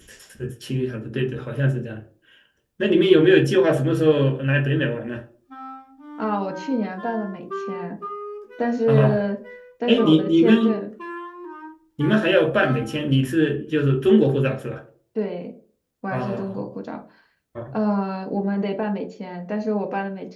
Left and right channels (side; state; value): both; identical; correlation 1.00